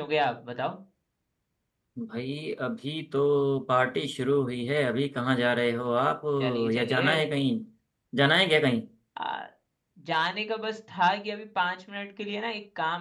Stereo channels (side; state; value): both; identical; correlation 1.00